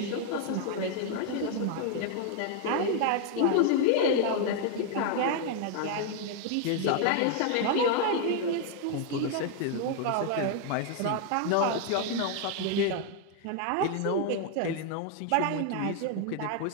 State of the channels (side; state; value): both; different; correlation 0.00